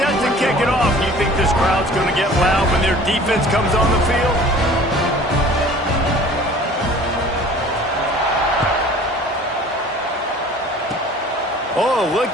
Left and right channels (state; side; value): normal; both; correlation 0.47